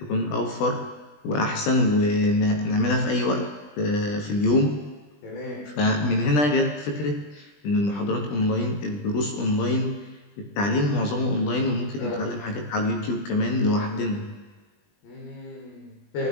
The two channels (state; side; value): late; right; 20 ms